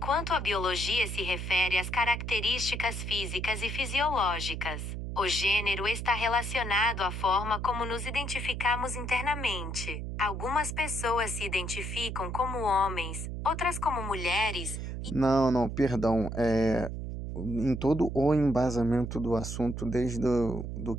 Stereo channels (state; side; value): noise; right; hum, 5 dB below the sound